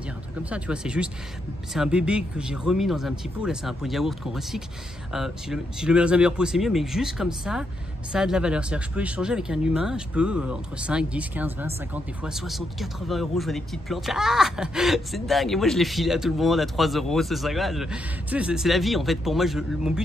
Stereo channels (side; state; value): both; normal; correlation 0.80